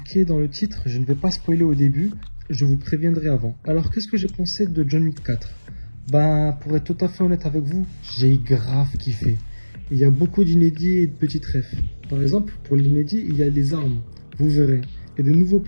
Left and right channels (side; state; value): both; inverted; correlation -1.00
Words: dans le titre, je ne vais pas spoiler au début, je vous préviendrai avant. Alors qu'est-ce que j'ai pensé de John Wick 4? Pour être tout à fait honnête avec vous, j'ai grave kiffé. Il y a beaucoup d'inédits et de petites refs. Par exemple, pour l'inédit, il y a des armes, vous verrez, et de nouveaux